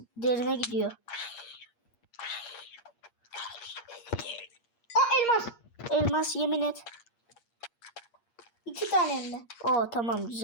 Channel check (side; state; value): right; late; 8.5 ms